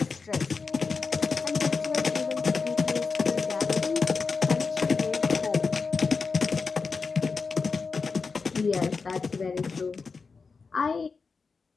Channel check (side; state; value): right; quieter; 4.7 dB